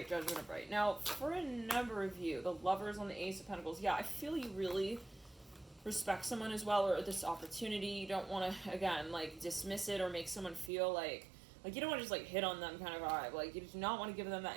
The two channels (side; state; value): left; drops out; at 10.7 s